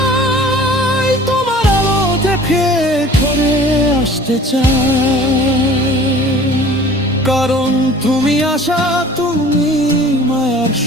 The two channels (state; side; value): normal; both; correlation 0.47